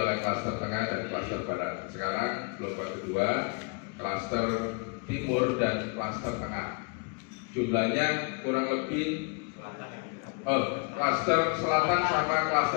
klaster tengah dan klaster barat. Sekarang gelombang kedua, klaster timur dan klaster tengah. Jumlahnya kurang lebih klaster selatan sama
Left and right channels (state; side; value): quieter; right; 34.6 dB